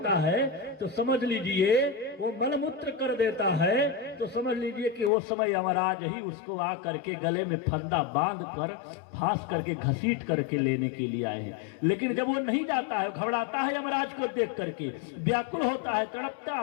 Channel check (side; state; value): right; drops out; at 5.1 s